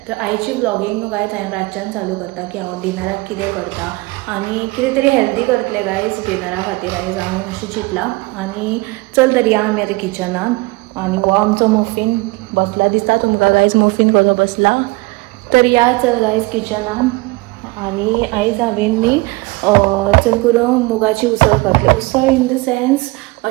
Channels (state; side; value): quieter; left; 23.7 dB